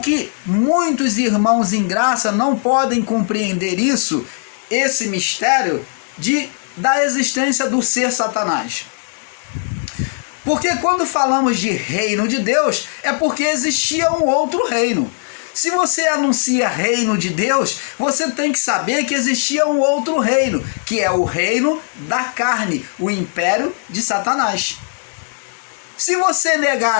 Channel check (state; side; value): silent; right; 61 dB below the other